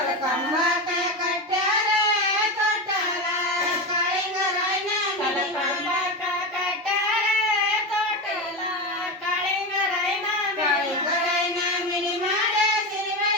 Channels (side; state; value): both; normal; correlation 0.18